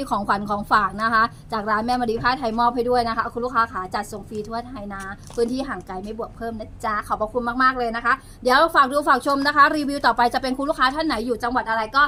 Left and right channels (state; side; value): identical; both; correlation 1.00